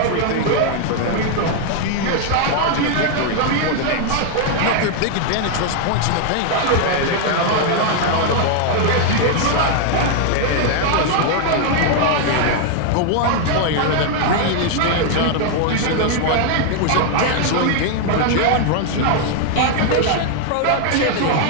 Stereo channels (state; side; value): different; both; correlation 0.00